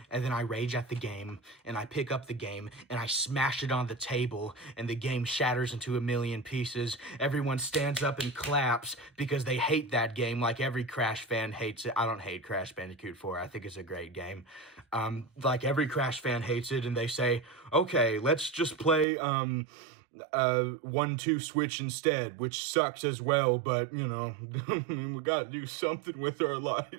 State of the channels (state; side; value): drops out; left; at 19.1 s